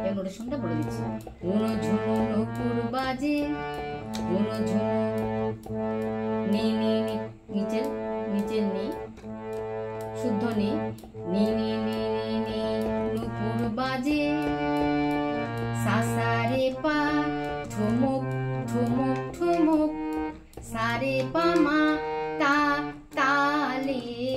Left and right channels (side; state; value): both; identical; correlation 1.00